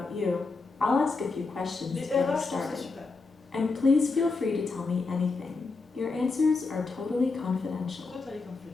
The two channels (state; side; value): quieter; right; 4.0 dB